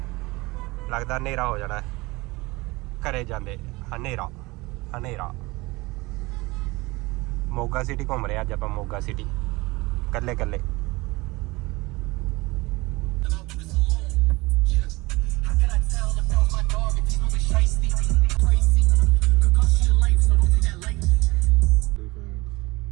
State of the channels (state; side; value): quieter; left; 22.5 dB